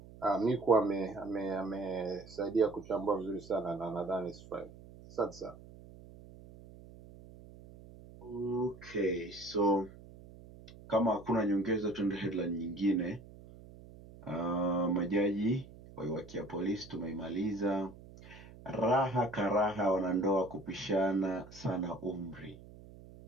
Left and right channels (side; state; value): right; noise; hum, 19 dB below the sound